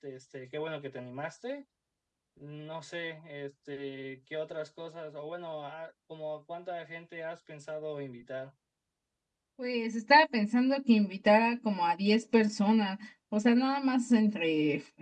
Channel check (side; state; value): both; identical; correlation 1.00